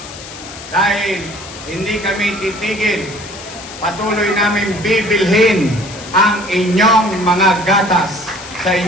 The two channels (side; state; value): left; noise; hiss, 14 dB below the sound